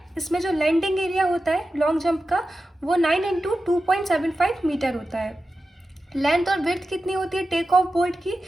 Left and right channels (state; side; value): normal; both; correlation 0.93